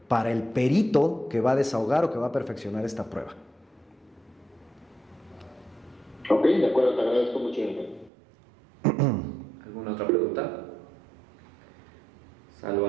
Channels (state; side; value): drops out; left; at 8.1 s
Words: para el perito que va a desahogar o que va a perfeccionar esta prueba. Ok, de acuerdo, te agradezco mucho. ¿Alguna otra pregunta?